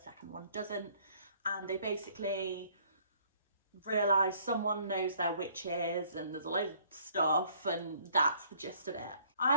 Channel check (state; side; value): inverted; both; correlation -0.60